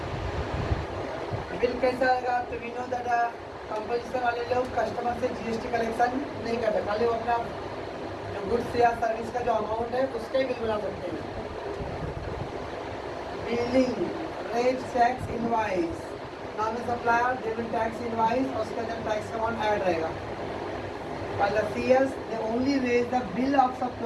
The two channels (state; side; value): identical; both; correlation 1.00